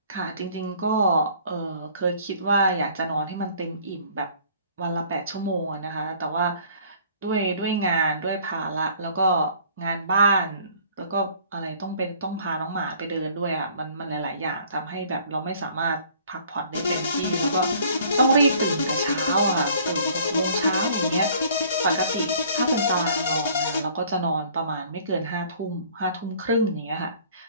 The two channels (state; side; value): inverted; both; correlation -0.54